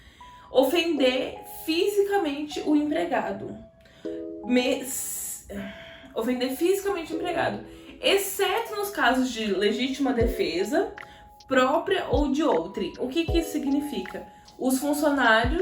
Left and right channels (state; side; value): identical; both; correlation 1.00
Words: ofender fisicamente o empregado. Ofender fisicamente o empregado, exceto nos casos de legítima defesa, própria ou de outrem. O que isso significa? Os